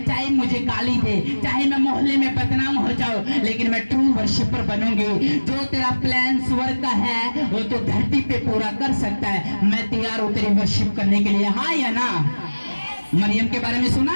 चाहे मुझे गाली दे, चाहे मैं मोहल्ले में बदनाम हो जाऊं, लेकिन मैं ट्रू वर्शिपर बनूंगी। जो तेरा प्लान स्वर्ग का है वो तो धरती पे पूरा कर सकता है। मैं तैयार हूं तेरी वर्शिप करने के लिए, हाँ या ना। मरियम के बारे में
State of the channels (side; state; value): both; inverted; correlation -1.00